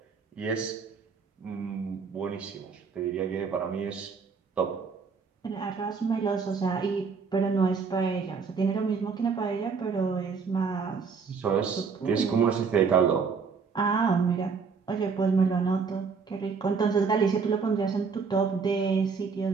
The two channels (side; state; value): left; quieter; 5.4 dB